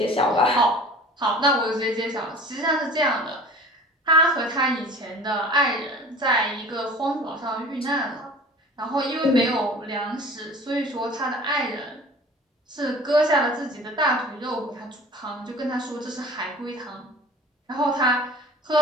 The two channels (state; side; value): normal; both; correlation 0.43